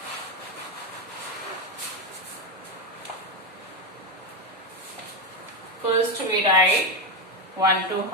first we write 1 to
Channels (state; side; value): normal; both; correlation 0.10